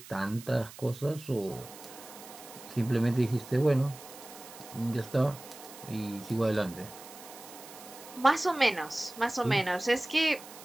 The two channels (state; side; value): noise; right; hiss, 17 dB below the sound